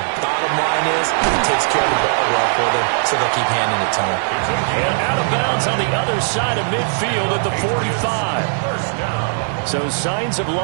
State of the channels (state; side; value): silent; left; 60 dB below the other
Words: bottom line is he takes care of the ball well for them, so they'll keep handing it to him. And out of bounds on the other side of midfield at the 45. So signs of